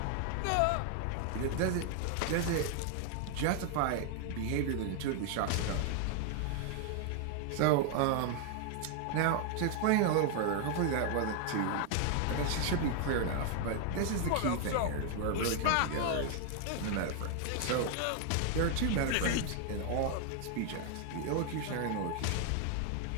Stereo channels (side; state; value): both; different; correlation 0.00